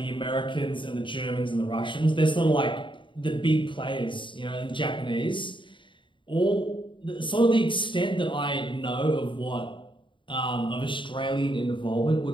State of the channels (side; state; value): right; late; 0.24 ms